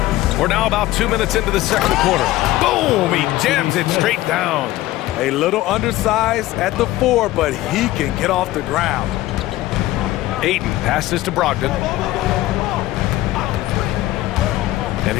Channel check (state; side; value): quieter; right; 16.4 dB